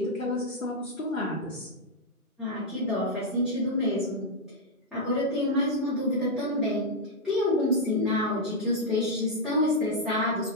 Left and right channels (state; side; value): normal; both; correlation -0.01